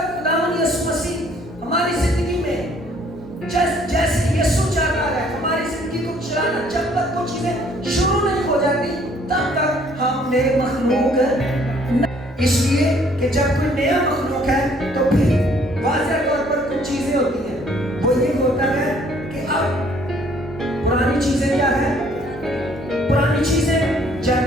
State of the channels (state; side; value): normal; both; correlation 0.61